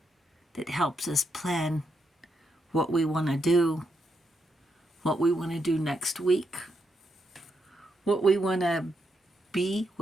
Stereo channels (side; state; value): both; normal; correlation 0.80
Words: that helps us plan what we want to do, what we want to do next week, what we want to be,